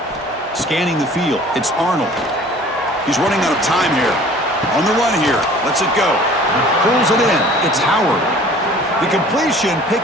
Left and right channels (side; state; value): both; normal; correlation 0.49